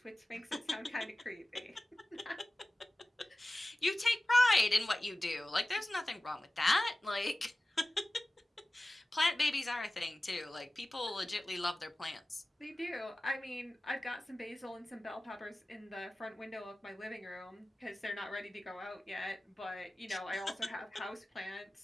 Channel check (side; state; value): both; normal; correlation 0.97